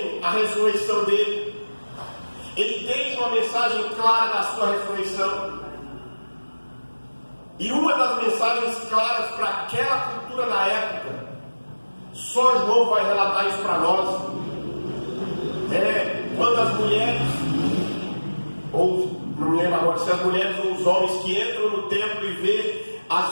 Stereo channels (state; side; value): inverted; both; correlation -1.00